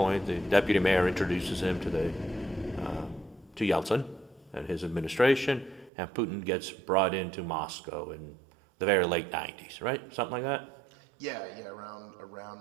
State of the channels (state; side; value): drops out; left; at 5.9 s